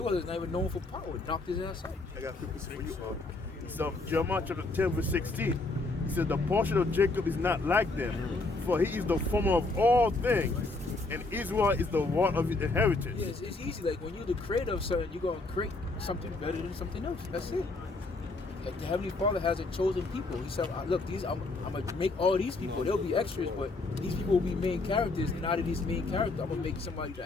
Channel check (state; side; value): quieter; right; 3.3 dB